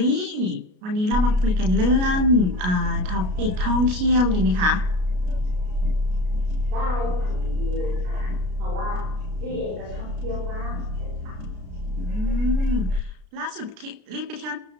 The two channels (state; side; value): late; left; 33 ms